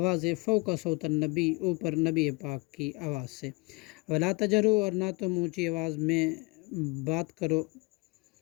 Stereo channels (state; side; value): quieter; right; 27.6 dB